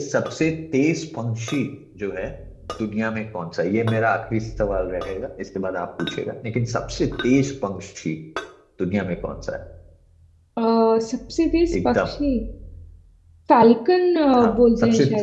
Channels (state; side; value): identical; both; correlation 1.00